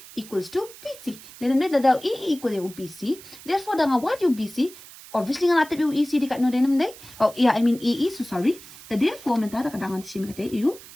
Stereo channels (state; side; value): noise; right; hiss, 18 dB below the sound